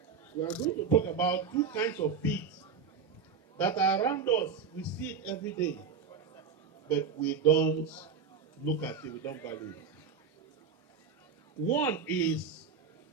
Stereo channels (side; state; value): left; quieter; 6.0 dB